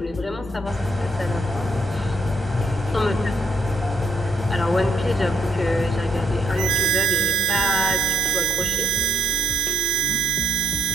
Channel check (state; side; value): normal; both; correlation 0.73